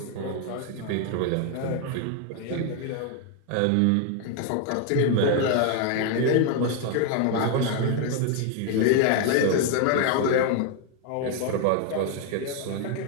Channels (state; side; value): different; both; correlation 0.00